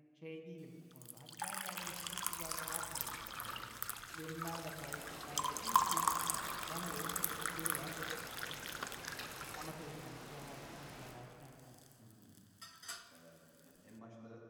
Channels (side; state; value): both; identical; correlation 1.00